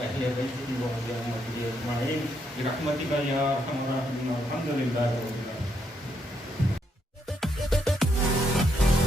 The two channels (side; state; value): both; normal; correlation 0.76